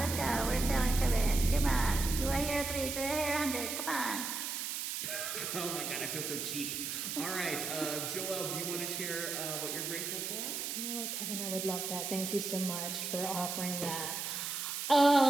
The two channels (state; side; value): noise; right; hiss, 3 dB below the sound